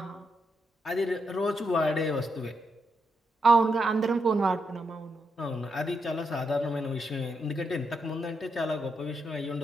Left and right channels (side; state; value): both; normal; correlation 0.82